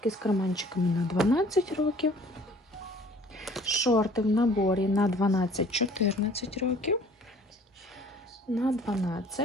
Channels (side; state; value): both; normal; correlation 0.53